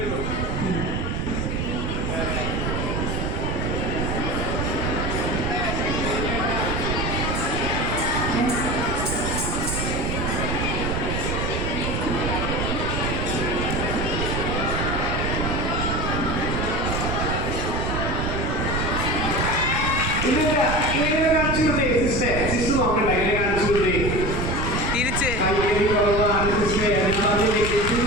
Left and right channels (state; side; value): noise; right; rumble, 1 dB below the sound